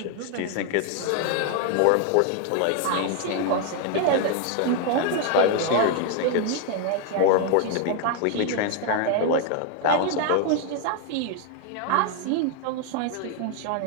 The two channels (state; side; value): different; both; correlation 0.00